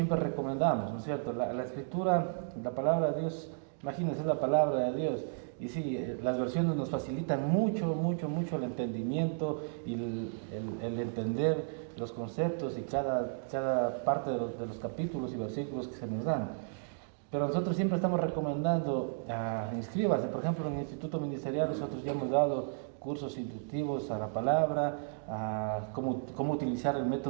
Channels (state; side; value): silent; left; digital silence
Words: recomendamos, ¿no es cierto? La escritura, la palabra de Dios, imagínense, la palabra de Dios. Y sí, las versiones nos facilitan mucho el entendimiento y el entender los conceptos y cada parte de los capítulos y versículos que se nos dan. Pero nosotros siempre estamos recomendando, inscríbase, por ejemplo, en el Instituto Ministerial nosotros ya hemos dado cursos inductivos a la palabra, cómo utilizar el